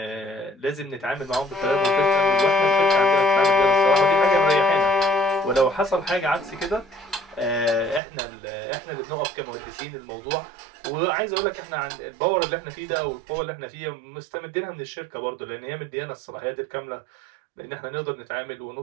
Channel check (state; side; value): drops out; left; at 8.0 s